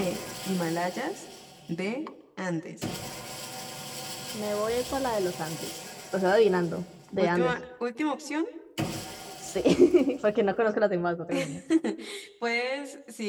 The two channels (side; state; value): both; identical; correlation 1.00